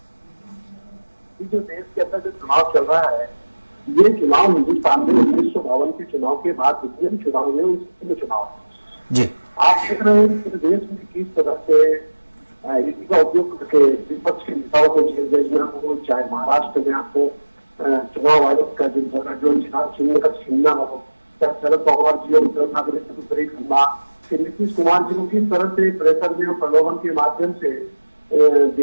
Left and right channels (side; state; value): both; inverted; correlation -1.00